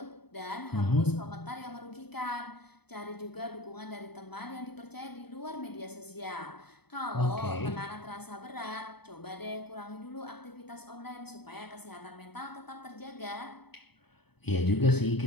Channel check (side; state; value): right; late; 0.97 ms